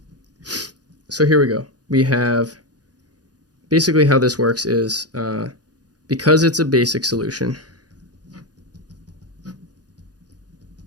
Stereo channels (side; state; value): left; late; 0.68 ms